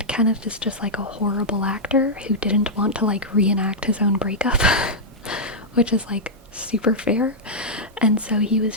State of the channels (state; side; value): normal; both; correlation -0.06